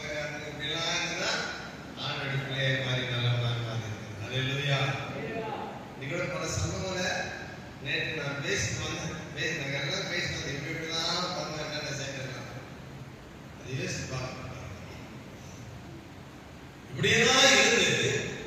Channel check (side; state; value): both; identical; correlation 1.00